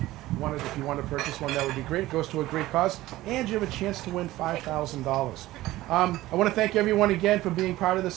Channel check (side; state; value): left; quieter; 16.8 dB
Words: if you want to purchase one, that would be great. It goes to a great cause, and you have a chance to win $5,000. I want to thank everyone again for being part of